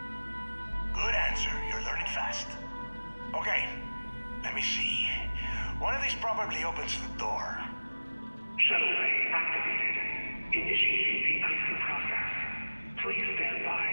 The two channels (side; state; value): both; inverted; correlation -1.00